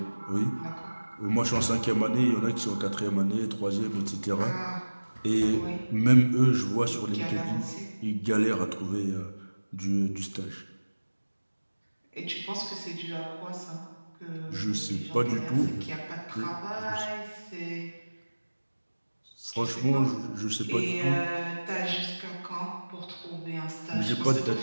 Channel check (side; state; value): both; inverted; correlation -1.00